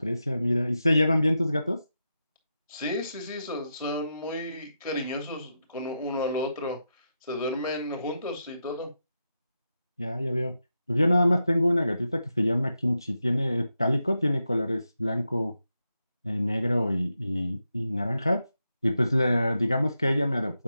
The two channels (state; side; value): inverted; both; correlation -0.87